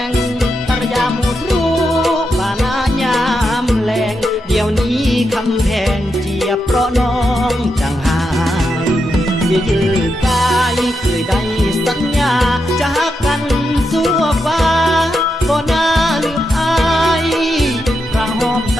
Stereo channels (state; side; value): normal; both; correlation 0.85